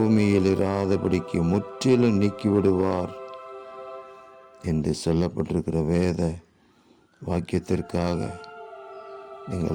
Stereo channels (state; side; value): identical; both; correlation 1.00